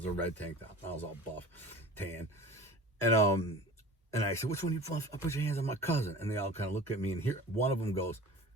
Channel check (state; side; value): normal; both; correlation 0.40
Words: a red tank top. I was all buff, tan. And I said, which one of you put your hands on my cousin? And they all kind of look at me, and here one of them goes,